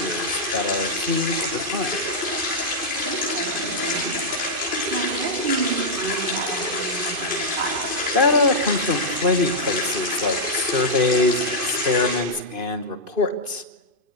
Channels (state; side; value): late; left; 2.5 ms